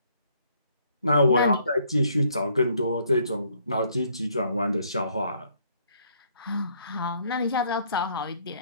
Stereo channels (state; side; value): inverted; both; correlation -0.66